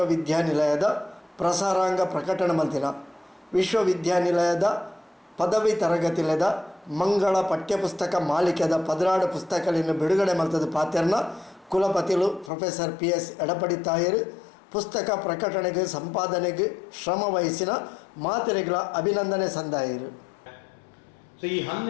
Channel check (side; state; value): right; drops out; at 12.5 s